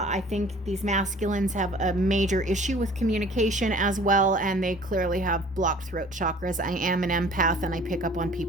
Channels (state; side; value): normal; both; correlation 0.50